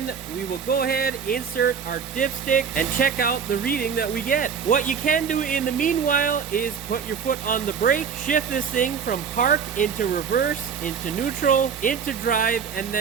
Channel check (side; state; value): left; quieter; 6.7 dB